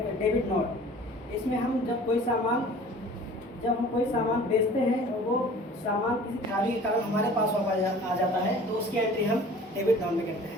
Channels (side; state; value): both; normal; correlation 0.46